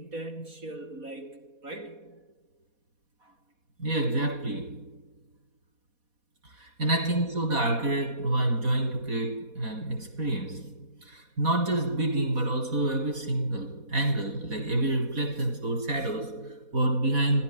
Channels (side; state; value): left; late; 4.2 ms